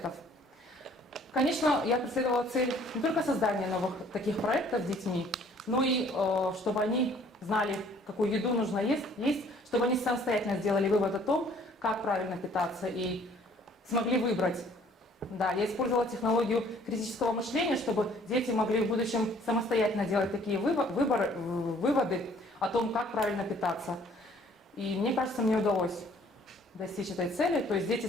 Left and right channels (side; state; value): both; normal; correlation 0.57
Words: Конечно, я преследовала цель не только создания новых таких проектов с детьми, но и чтобы они знали, какую еду нужно есть, чтобы они самостоятельно сделали вывод о том, как правильно питаться, и смогли выбрать. Да, я использовала технологию критического мышления, чтобы дети могли в будущем самостоятельно делать такие выводы о том, как правильно питаться. И мне кажется, мне удалось достичь этой цели. То есть дети